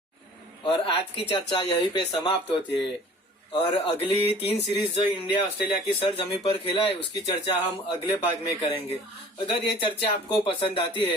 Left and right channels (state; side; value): normal; both; correlation 0.48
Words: और आज की चर्चा यहीं पे समाप्त होती है और अगली 3 सीरीज जो इंडिया ऑस्ट्रेलिया की सरजमी पर खेला है उसकी चर्चा हम अगले भाग में करेंगे। अगर ये चर्चा आपको पसंद आती